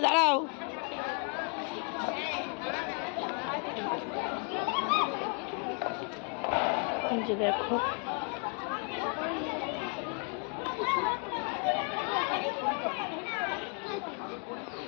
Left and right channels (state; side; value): quieter; right; 38.2 dB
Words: দাঁড়াও। যে দেখো